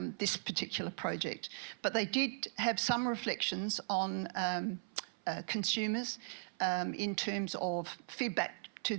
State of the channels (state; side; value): silent; left; 52 dB below the other